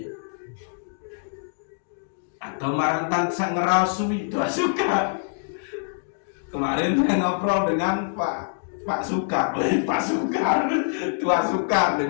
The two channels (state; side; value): silent; right; digital silence